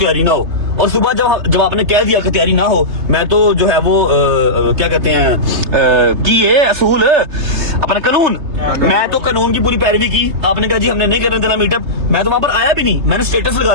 ना हो। और सुबह जब आपने कह दिया कि तैयारी ना हो, मैं तो जो है वो क्या कहते हैं कि ये असूल अपना कानून, मैं तो कानून की पूरी पैरवी की। आपने कहा जी हमने नहीं करने देना मीटअप, मैं तो वहां पर आया भी नहीं, मैंने स्टेटस लगा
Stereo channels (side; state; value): left; late; 3.3 ms